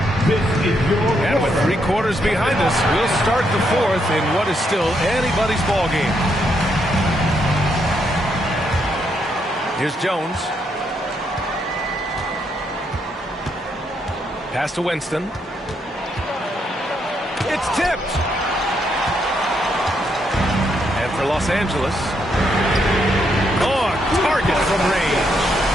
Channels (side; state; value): both; normal; correlation 0.77